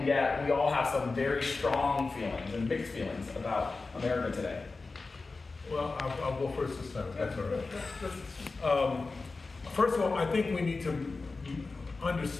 yet we all have some very strong feelings and mixed feelings about America today. Well, I'll go first this time. That's all right. First of all, I think we need to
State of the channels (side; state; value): right; quieter; 3.8 dB